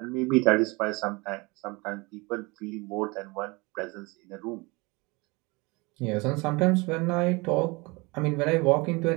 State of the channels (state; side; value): quieter; left; 25.8 dB